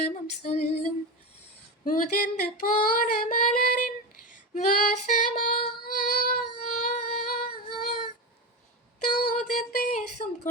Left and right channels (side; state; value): both; normal; correlation 0.18